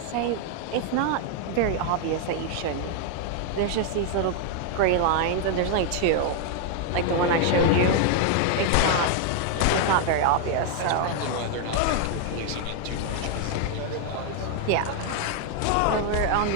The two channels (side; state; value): both; different; correlation 0.00